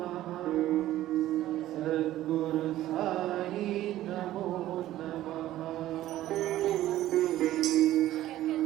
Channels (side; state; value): left; quieter; 14.2 dB